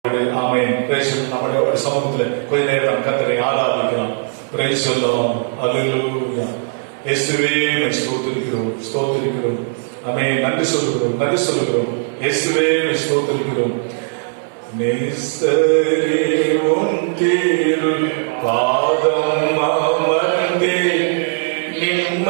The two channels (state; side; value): silent; left; digital silence